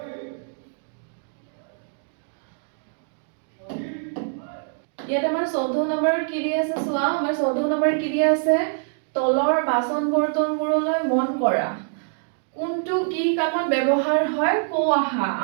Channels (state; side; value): silent; left; digital silence